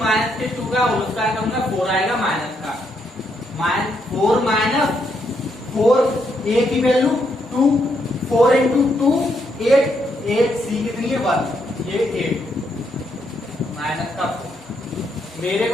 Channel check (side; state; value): both; normal; correlation 0.77